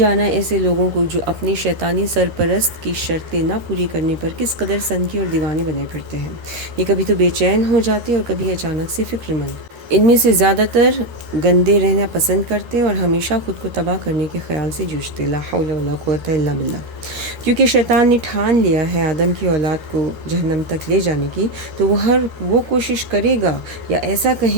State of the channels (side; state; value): left; late; 13 ms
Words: ایسے لوگوں کو جو اپنی شیطانی سرپرست کی شرطیں نہ پوری کرنے پر کس قدر سنکی اور دیوانے بنے پھرتے ہیں۔ یہ کبھی تو بے چین ہو جاتے اور کبھی اچانک سے فکر مند۔ ان میں سے زیادہ تر گندے رہنا پسند کرتے اور ہمیشہ خود کو تباہ کرنے کے خیال سے جوجھتے، لا حول ولا قوت الا باللہ۔ کیونکہ شیطان نے ٹھان لیا ہے آدم کی اولاد کو جہنم تک لے جانے کی، تو وہ کوشش کرے گا، یا ایسا